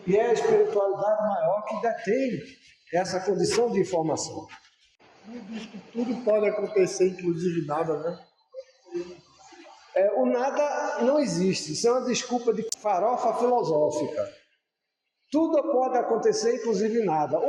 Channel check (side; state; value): both; identical; correlation 1.00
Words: E é a espiritualidade maior que detém essa condição de informação. Diz que tudo pode acontecer, inclusive nada, né? O nada não existe, isso é uma desculpa de farofa filosófica. Tudo pode acontecer, inclusive nada.